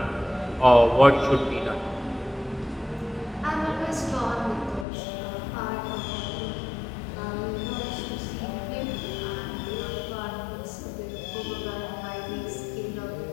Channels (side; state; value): right; drops out; at 4.9 s